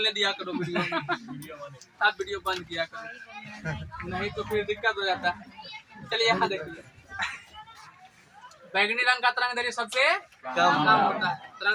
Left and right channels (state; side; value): identical; both; correlation 1.00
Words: दिया करो वीडियो में, तब वीडियो बंद किया करो, नहीं तो फिर दिक्कत हो जाता है। चलिए यहाँ देखिए, बैगनी रंग का तरंग दैर्घ्य सबसे कम होता है।